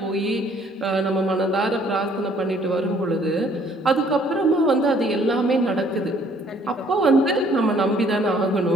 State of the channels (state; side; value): normal; both; correlation 0.61